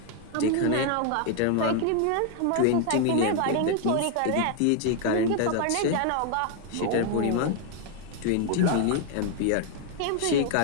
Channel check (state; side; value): different; both; correlation 0.00